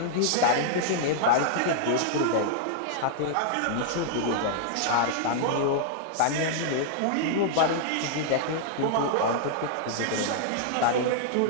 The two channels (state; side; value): different; both; correlation -0.01